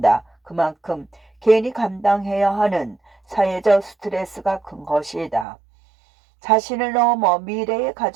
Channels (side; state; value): left; drops out; at 5.5 s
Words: 그만큼 개인이 감당해야 하는 사회적 스트레스가 큰 것이다. 자신을 넘어 미래의